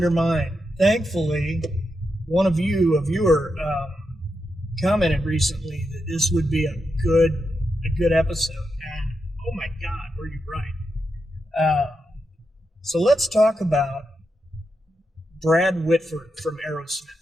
mine. Thankfully, one of you, a viewer, commented recently that this would be a good episode. And oh my God, were you right? So let's talk about Brad Whitford from Aerosmith.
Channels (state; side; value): normal; both; correlation 0.86